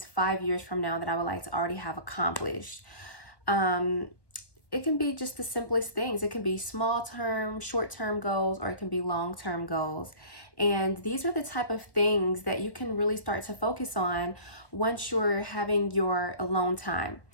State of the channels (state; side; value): late; right; 1.2 ms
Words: 5 years from now that I would like to already have accomplished? It can be just the simplest things. It can be small-term, short-term goals, or it can be long-term goals. And these are the type of things that you can really start to focus on once you're having your alone time.